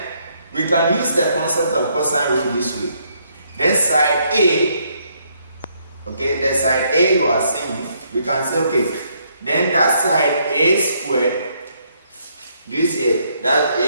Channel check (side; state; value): both; inverted; correlation -0.72